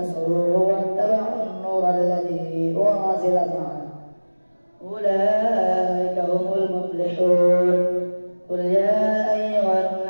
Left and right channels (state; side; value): inverted; both; correlation -1.00